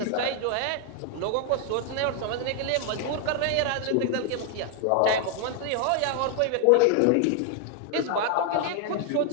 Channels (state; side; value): different; both; correlation 0.00